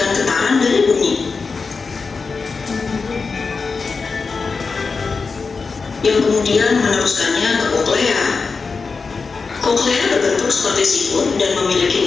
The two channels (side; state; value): right; quieter; 4.6 dB